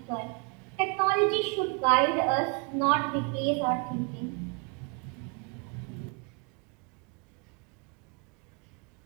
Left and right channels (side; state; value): left; quieter; 34.4 dB